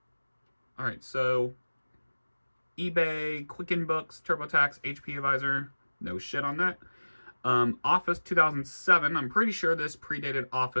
All right, so eBay, Quicken Books, TurboTax, HP Advisor, no shit on that. Office 2007, I'm pretty sure this predated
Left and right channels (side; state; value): both; inverted; correlation -1.00